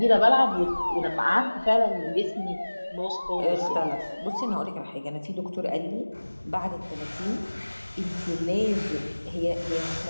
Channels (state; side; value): inverted; both; correlation -1.00